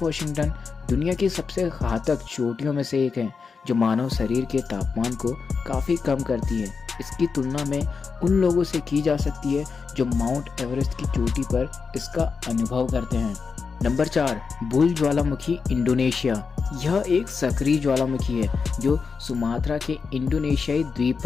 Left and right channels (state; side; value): quieter; right; 5.2 dB